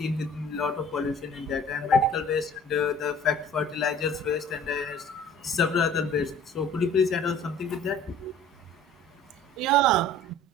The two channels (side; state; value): both; normal; correlation 0.48